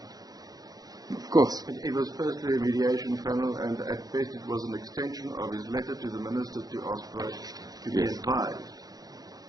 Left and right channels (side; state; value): left; late; 0.18 ms